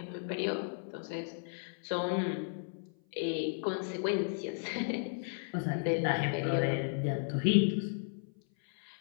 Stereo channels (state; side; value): silent; right; 55 dB below the other